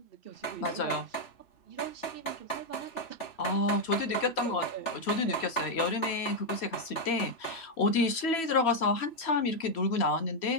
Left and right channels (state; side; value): late; right; 3.1 ms